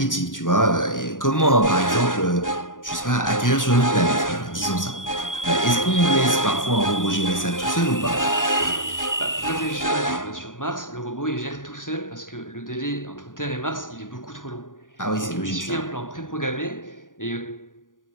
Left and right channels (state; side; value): late; right; 0.88 ms